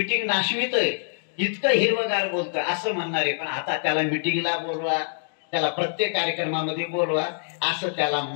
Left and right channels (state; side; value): silent; right; digital silence